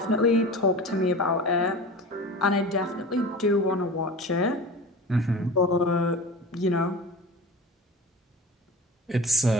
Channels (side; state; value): both; normal; correlation 0.34